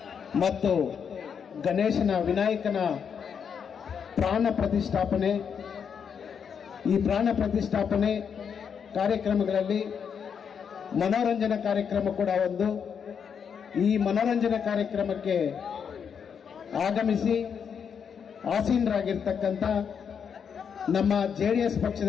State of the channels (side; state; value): right; quieter; 7.1 dB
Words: ಮತ್ತು ಗಣೇಶನ ವಿನಾಯಕನ ಪ್ರಾಣ ಪ್ರತಿಷ್ಠಾಪನೆ, ಈ ಪ್ರಾಣ ಪ್ರತಿಷ್ಠಾಪನೆ ಕಾರ್ಯಕ್ರಮಗಳಲ್ಲಿ ಮನೋರಂಜನಾ ಕಾರ್ಯಕ್ರಮ ಕೂಡ ಒಂದು. ಈ ಮನೋರಂಜನಾ ಕಾರ್ಯಕ್ರಮಕ್ಕೆ ಆಗಮಿಸಿ ಆಸೀನರಾಗಿರ್ತಕ್ಕಂಥ ನಮ್ಮ JDS